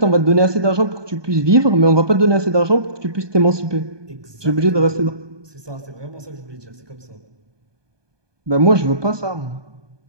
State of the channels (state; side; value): late; left; 1.2 ms